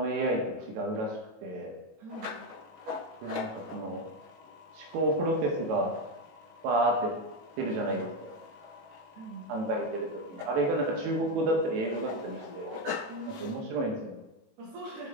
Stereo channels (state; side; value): late; left; 18 ms